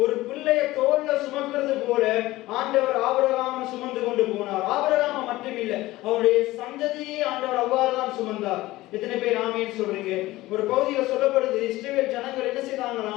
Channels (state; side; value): quieter; right; 17.9 dB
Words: ஒரு பிள்ளைய தோல்ல சுமக்கிறது போல ஆண்டவர் ஆபிரகாமை சுமந்து கொண்டு போனார். ஆபிரகாமை மட்டுமில்ல, அவருடைய சந்ததியை ஆண்டவர் அவ்வாறுதான் சுமந்தார். எத்தனை பேர் ஆமீன் சொல்றீங்க? ஒரு பகுதியில் சொல்லப்படுது, இஸ்ரவேல் ஜனங்கள் என்ன